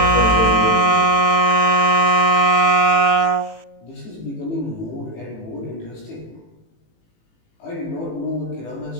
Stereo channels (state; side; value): late; right; 18 ms